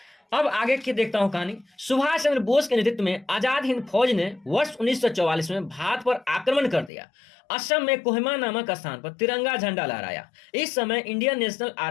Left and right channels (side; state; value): right; drops out; at 6.9 s